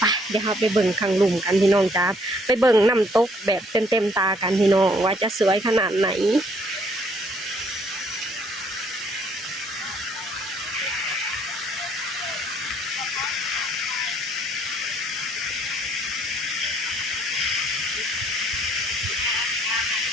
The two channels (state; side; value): normal; both; correlation 0.65